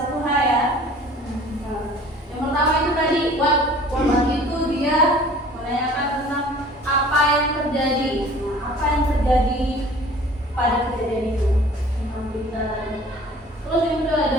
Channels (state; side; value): normal; both; correlation 0.48